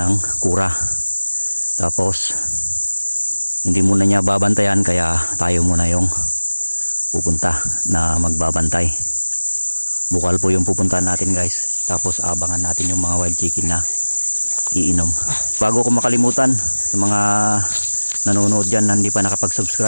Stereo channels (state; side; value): inverted; both; correlation -1.00